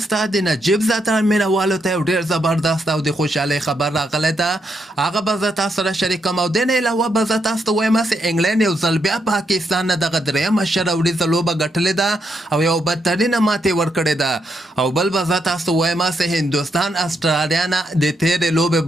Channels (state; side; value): normal; both; correlation 0.79